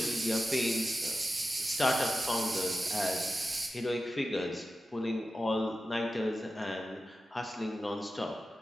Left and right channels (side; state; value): both; normal; correlation 0.92